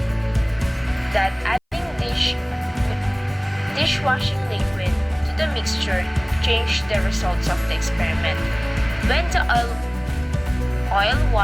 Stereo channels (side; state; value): both; identical; correlation 1.00